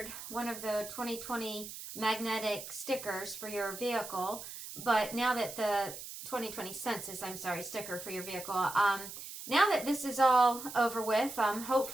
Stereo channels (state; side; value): noise; right; hiss, 11 dB below the sound